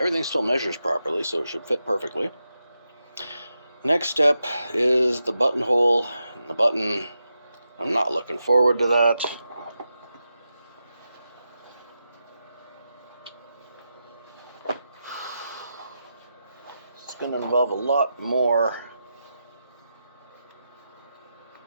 still measures properly, so it should fit perfectly. Next step is the buttonhole and the button. I'm not looking forward to that. It's going to involve a lot more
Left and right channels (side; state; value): both; inverted; correlation -0.88